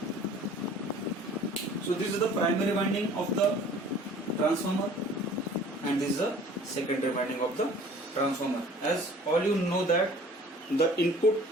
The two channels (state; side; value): normal; both; correlation 0.49